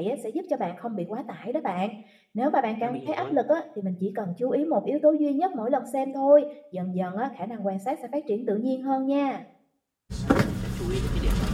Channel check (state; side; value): identical; both; correlation 1.00